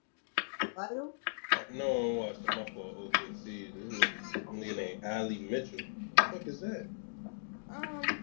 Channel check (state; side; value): silent; right; digital silence